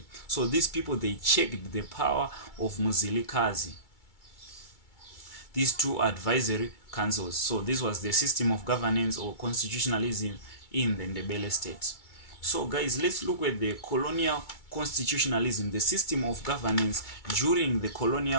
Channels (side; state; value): right; late; 2.3 ms